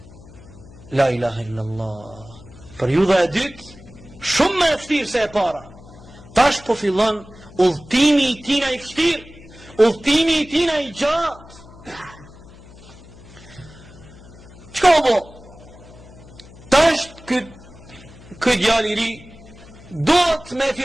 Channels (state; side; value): noise; left; hum, 20 dB below the sound